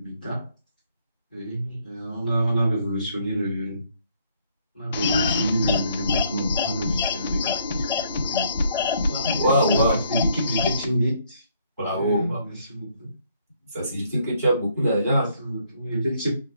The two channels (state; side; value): inverted; both; correlation -0.68